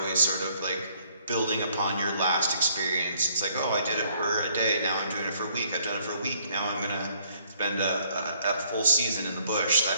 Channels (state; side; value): inverted; both; correlation -0.64